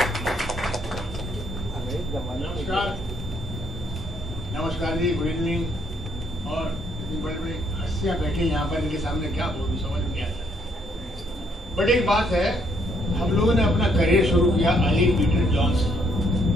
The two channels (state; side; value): normal; both; correlation 0.70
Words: नमस्कार, नमस्कार जी, गुड इवनिंग। और इतनी बड़ी बड़ी हस्तियां बैठी यहाँ पर, इनके सामने क्या बोलूं समझ में नहीं आता। बट एक बात है, हम लोगों ने अपना करियर शुरू किया अली पीटर जॉन से।